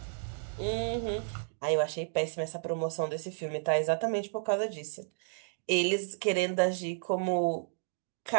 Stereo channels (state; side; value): silent; left; digital silence